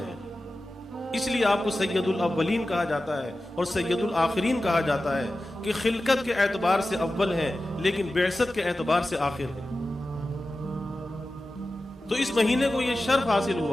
اس لیے آپ کو سید الاولین کہا جاتا ہے اور سید الآخرین کہا جاتا ہے کہ خلقت کے اعتبار سے اول ہیں لیکن بعثت کے اعتبار سے آخر ہیں۔ تو اس مہینے کو یہ شرف حاصل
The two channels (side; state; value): both; normal; correlation 0.94